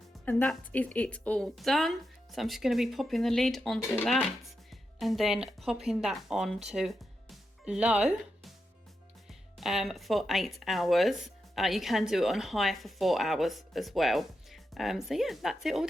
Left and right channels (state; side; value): normal; both; correlation 0.87